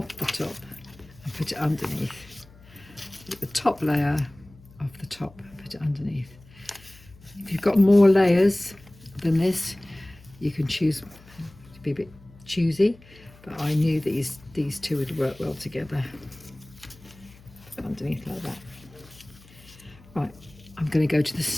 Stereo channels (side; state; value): left; noise; hum, 24 dB below the sound